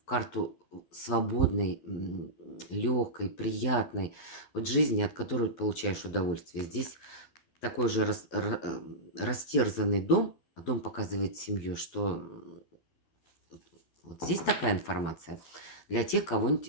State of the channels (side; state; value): right; late; 12 ms